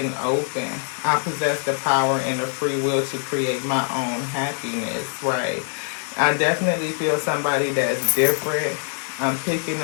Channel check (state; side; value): silent; right; 60 dB below the other